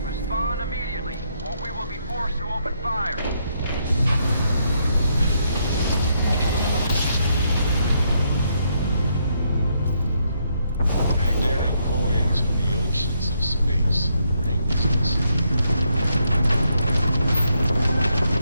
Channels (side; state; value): both; inverted; correlation -0.76